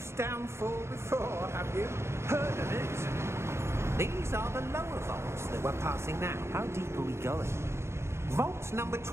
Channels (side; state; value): left; late; 0.13 ms